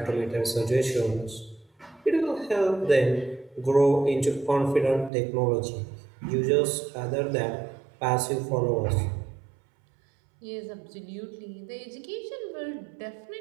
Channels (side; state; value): left; drops out; at 5.1 s